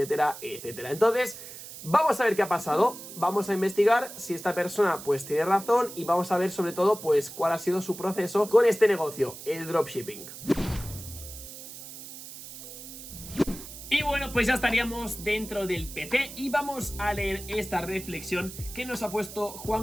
etcétera. Entonces, vamos a ver qué ha pasado, vamos a investigar si esta persona pues tiene razón y vamos a ver sobre todo pues cuál ha sido su proceso con este negocio, el dropshipping. Y bueno, pues ya estaríamos dentro del PC y vamos a leer esta reflexión que nos ha puesto Juan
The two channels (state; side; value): noise; right; hiss, 13 dB below the sound